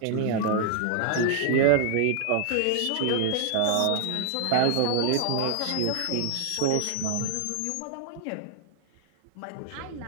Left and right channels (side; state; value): both; different; correlation -0.01